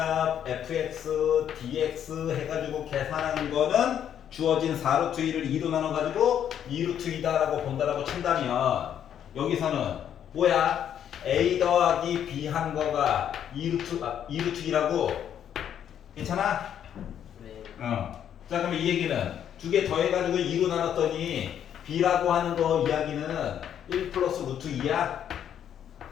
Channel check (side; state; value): right; quieter; 9.5 dB